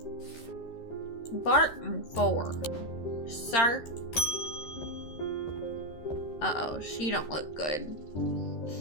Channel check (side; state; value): right; late; 13 ms